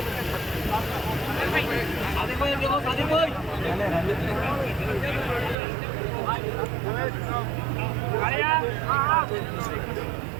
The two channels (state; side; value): drops out; left; at 5.6 s